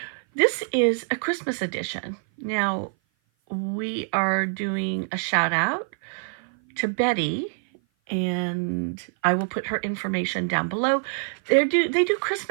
This is a Christmas edition. Now, we are doing a shout out to Betty, and I will put her information down below. They do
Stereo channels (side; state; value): left; silent; 56 dB below the other